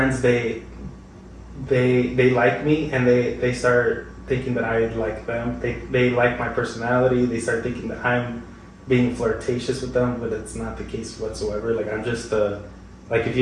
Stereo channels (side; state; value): both; identical; correlation 1.00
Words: they like me and they start thinking that I like them. They like my personality. They start thinking that I'm being flirtatious with them, but it's not the case whatsoever. Like I'm just like if